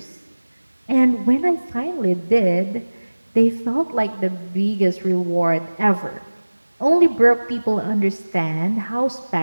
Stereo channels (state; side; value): inverted; both; correlation -1.00